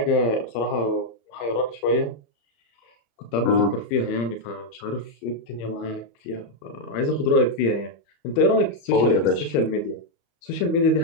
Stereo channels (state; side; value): late; right; 34 ms